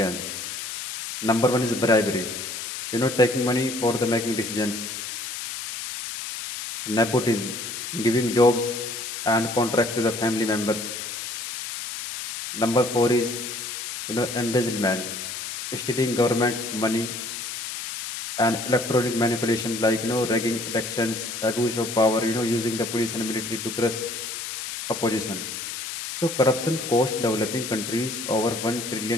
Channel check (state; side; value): noise; left; hiss, 7 dB below the sound